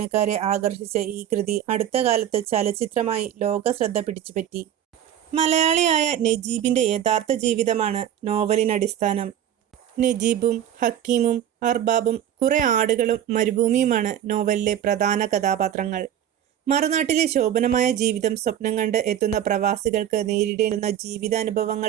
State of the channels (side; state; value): left; quieter; 10.4 dB